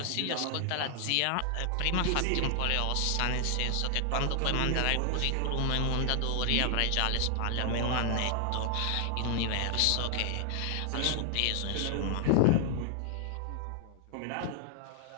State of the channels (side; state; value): both; different; correlation 0.00